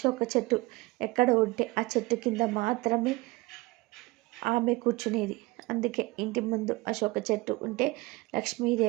చెట్టు ఎక్కడ ఉంటే ఆ చెట్టు కింద మాత్రమే ఆమె కూర్చునేది. అందుకే ఇంటి ముందు అశోక చెట్టు ఉంటే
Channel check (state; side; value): quieter; left; 21.7 dB